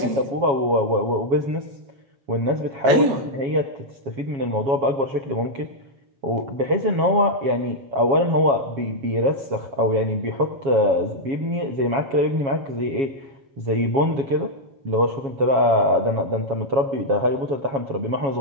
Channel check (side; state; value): left; late; 7.3 ms